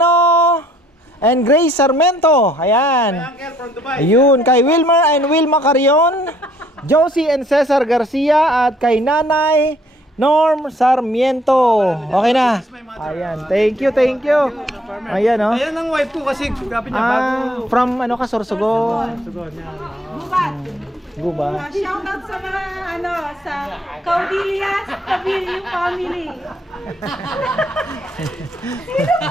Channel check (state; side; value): normal; both; correlation 0.63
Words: and Grace Sarmento. Ayan. Ayun, kay Wilmer and Wilma Carion, Josie and Cesar Garcia, at kay Nanay Norm Sarmiento. Okay na. Ayan, thank you. Ayan oh. Ayan ang wife ko kasi grabe niya bago. From ano ka, Sorsogon? Guba. Shoutout sa mga sa Caudillas, Cabillo family.